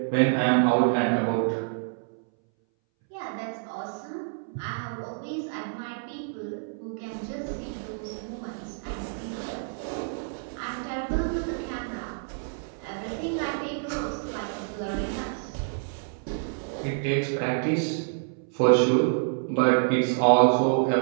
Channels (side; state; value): left; silent; 60 dB below the other